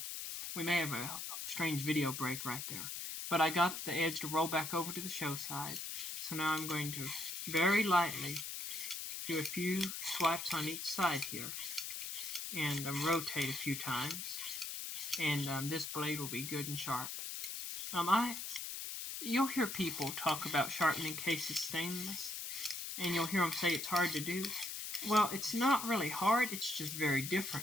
we may have a strange video break right there. But I got the edge to roll back over to the show side. So now I'm going to very lightly do a few swipes on each side here and rotate a few times. And this blade will be good and sharp. You'll hear people talk about sharpening cases stainless, and you'll hear them say it's hard to do. Well, it's not really hard, it's just very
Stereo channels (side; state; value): left; noise; hiss, 5 dB below the sound